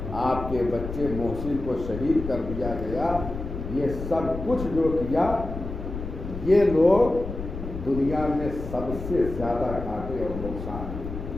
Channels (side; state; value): left; noise; rumble, 8 dB below the sound